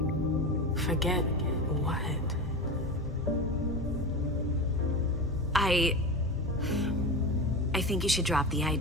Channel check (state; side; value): normal; both; correlation 0.24